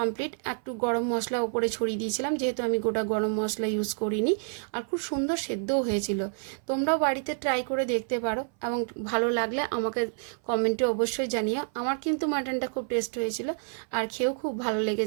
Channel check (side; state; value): left; silent; 58 dB below the other